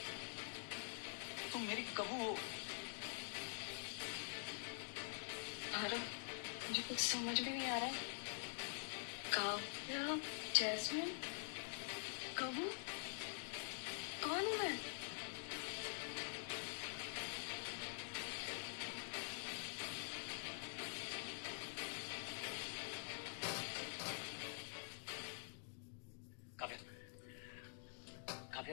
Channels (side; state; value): right; silent; digital silence